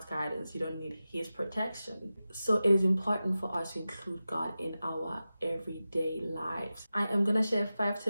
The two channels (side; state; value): both; inverted; correlation -0.94